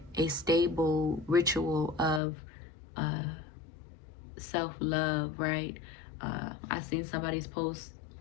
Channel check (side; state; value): right; drops out; at 2.2 s